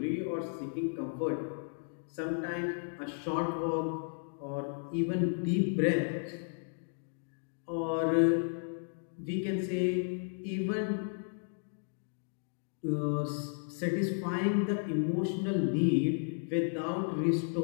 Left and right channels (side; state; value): right; silent; digital silence